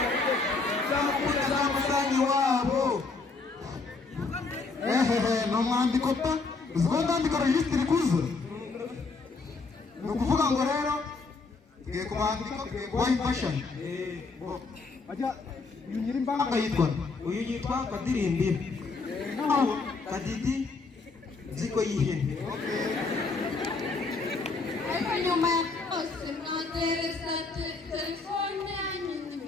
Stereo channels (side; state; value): right; quieter; 4.1 dB